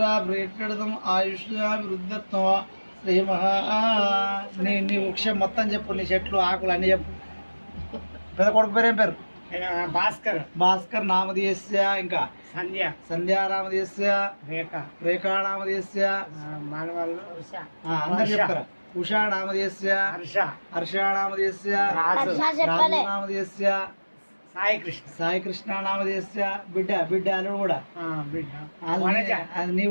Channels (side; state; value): both; inverted; correlation -1.00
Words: ప్రీత్యర్థం ఆయుష్యాభివృద్ధిత్వం శ్రీ నీ వృక్షం మొత్తం చెప్పు నీ చెట్లు ఆకులు అన్ని చెప్పు పెద్ద కొడుకు పేరు ఏం పేరు భాస్కర్ నామధేయస్య ఇంకా సంధ్యా నామధేయస్య రేఖా నామధేయస్య అందరు చెప్తారా ఉషా నామధేయస్య హర్ష నామధేయస్య రాజు నామధేయస్య సాయి కృష్ణ నామధేయస్య బిడ్డ అల్లుడు కూడా అది నీ